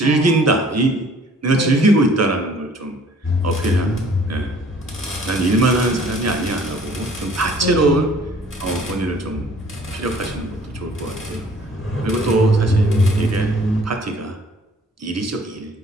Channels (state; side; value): normal; both; correlation 0.55